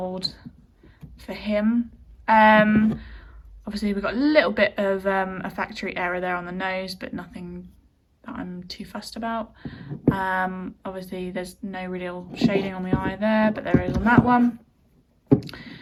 for him. Obviously we've got a little bit of a factory error there on the nose, but nothing that I'm too fussed about. Obviously there's no real shading on the eye there, but there is on that one.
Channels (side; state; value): both; identical; correlation 1.00